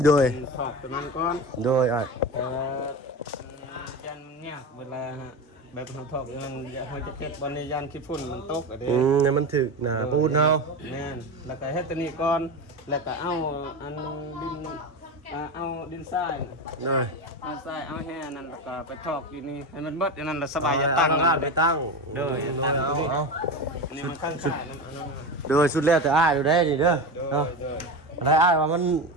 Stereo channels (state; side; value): normal; both; correlation 0.22